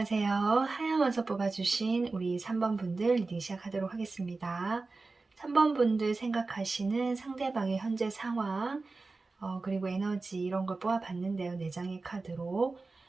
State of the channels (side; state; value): left; quieter; 3.7 dB